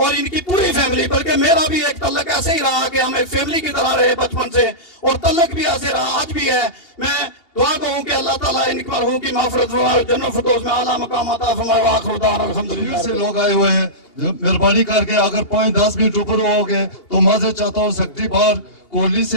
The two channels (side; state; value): right; late; 2.8 ms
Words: ان کی پوری فیملی، بلکہ میرا بھی ایک تعلق ایسے ہی رہا کہ ہم ایک فیملی کی طرح رہے بچپن سے، اور تعلق بھی ایسے رہا آج بھی ہے. میں دعا کروں کہ اللہ تعالیٰ ان مرحوم کی مغفرت فرمائے، جنت الفردوس میں اعلیٰ مقام عطا فرمائے. وآخر دعوانا الحمدللہ. سے لوگ آئے ہوئے ہیں، مہربانی کر کے اگر 5-10 منٹ اوپر ہو گئے تو معذرت چاہتا ہوں. سیکرٹری بار کوہلی